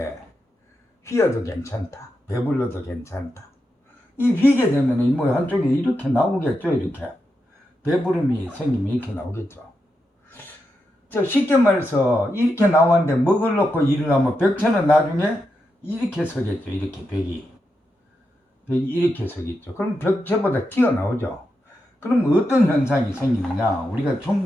휘어도 괜찮다, 배불러도 괜찮다. 이 휘게 되면 뭐 한쪽에 이렇게 나오겠죠. 이렇게 배부름이 생기면 이렇게 나오겠죠. 쉽게 말해서 이렇게 나왔는데 먹을 놓고 일어나면 벽체는 나중에 이렇게 서겠죠. 이렇게 벽이 이렇게 서겠죠. 그럼 벽체보다 튀어나오죠. 그럼 어떤 현상이 생기느냐 우리가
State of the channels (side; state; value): both; normal; correlation 0.86